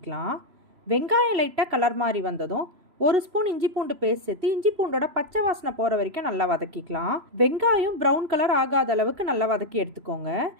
வெங்காயம் லைட்டாக கலர் மாதிரி வந்ததும் 1 ஸ்பூன் இஞ்சி பூண்டு பேஸ்ட் சேர்த்து இஞ்சி பூண்டோட பச்சை வாசனை போகிற வரைக்கும் நல்லா வதக்கிக்கலாம். வெங்காயம் ப்ரௌன் கலர் ஆகாத அளவுக்கு நல்லா வதக்கி எடுத்துக்கோங்க.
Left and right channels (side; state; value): left; late; 3.0 ms